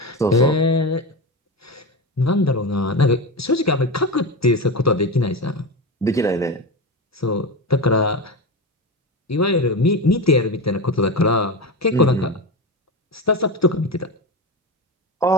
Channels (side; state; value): both; normal; correlation 0.20